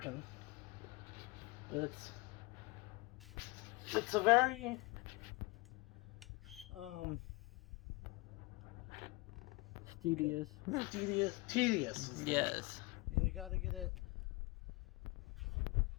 It's a very Tedious. tedious. Yes. And you gotta get it.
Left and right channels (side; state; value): right; quieter; 23.6 dB